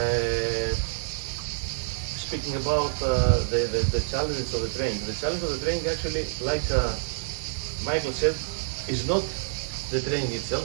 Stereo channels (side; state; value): left; silent; 60 dB below the other